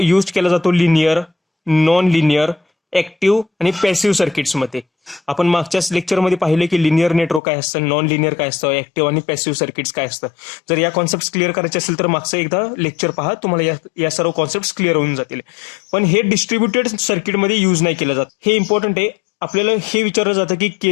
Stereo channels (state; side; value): drops out; right; at 7.4 s